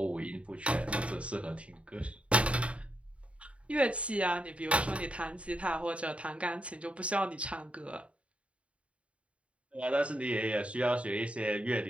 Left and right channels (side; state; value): left; late; 0.062 ms